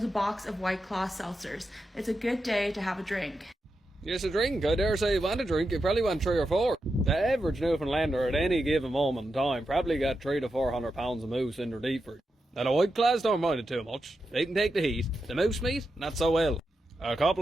a box of White Claw seltzers. It's a good day to have a drink. Yes, a drink. I dare say you want a drink. You probably want 3 or 4. The average Newfoundlander at any given moment in time probably got 300 to 400 pounds of moose in their deep fridge. Now the White Claws don't mind it too much. They can take the heat. The moose meat, not so well. A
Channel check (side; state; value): both; normal; correlation 0.88